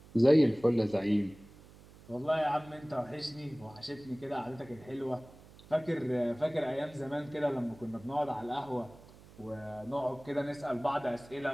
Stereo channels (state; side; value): noise; right; hum, 22 dB below the sound